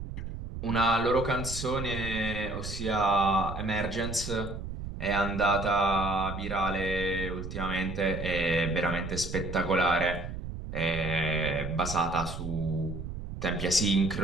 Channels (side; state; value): right; noise; rumble, 8 dB below the sound